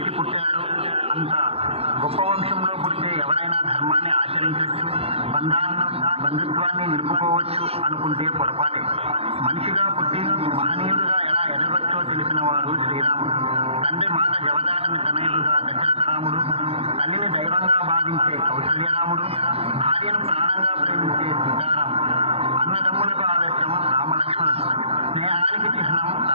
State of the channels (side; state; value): left; late; 0.28 ms